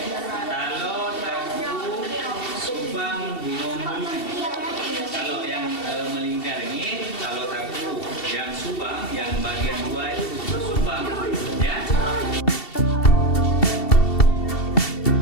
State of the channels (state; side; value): late; right; 2.7 ms